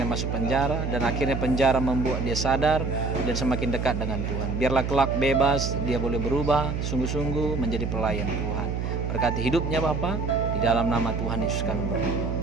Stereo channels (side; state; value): right; noise; hum, 2 dB below the sound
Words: masuk penjara, dan akhirnya penjara membuat dia sadar dan semakin dekat dengan Tuhan. Biarlah kelak bebas, dia boleh berubah sungguh-sungguh menjadi pelayan Tuhan. Berkati hidupnya Bapak, di dalam nama Tuhan Yesus kami berdoa.